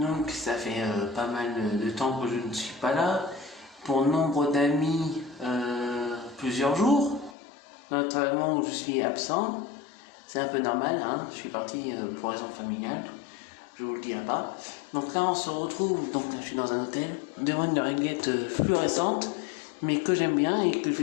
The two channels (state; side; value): drops out; right; at 7.4 s